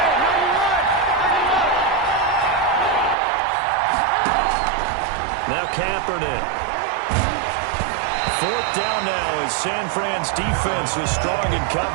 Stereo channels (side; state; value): left; drops out; at 3.2 s